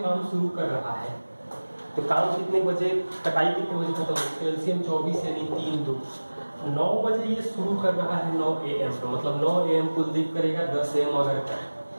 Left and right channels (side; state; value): both; inverted; correlation -1.00